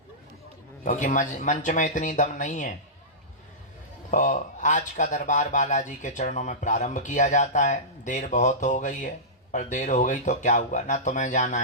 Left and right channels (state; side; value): normal; both; correlation -0.17